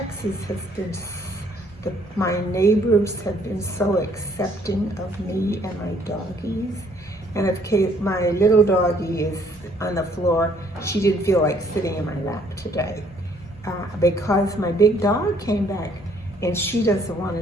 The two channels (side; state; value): both; normal; correlation 0.64